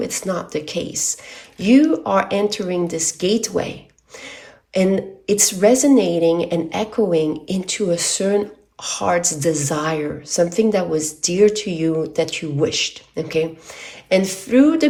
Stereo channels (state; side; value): identical; both; correlation 1.00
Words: it's not the case. You are entering this gateway, and it's resonating and echoing into a certain heart's desire, something that was dear to you that you wished, okay? And through